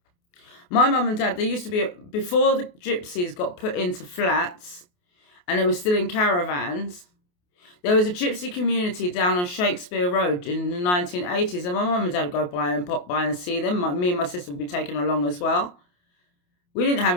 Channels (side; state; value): right; late; 28 ms